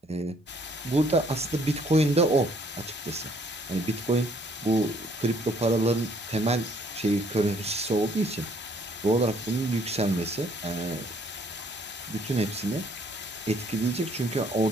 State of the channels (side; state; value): both; normal; correlation 0.63